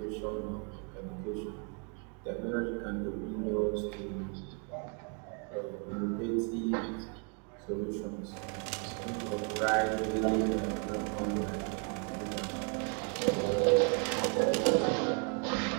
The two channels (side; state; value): left; quieter; 38.5 dB